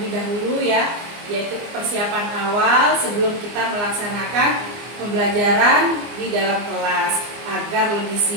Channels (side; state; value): left; late; 24 ms